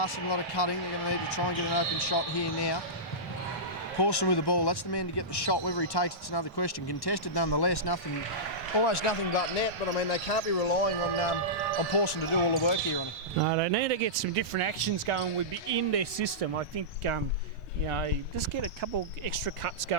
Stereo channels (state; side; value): normal; both; correlation -0.15